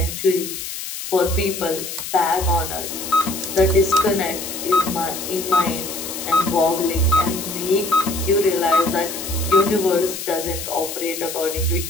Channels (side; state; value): left; noise; hiss, 7 dB below the sound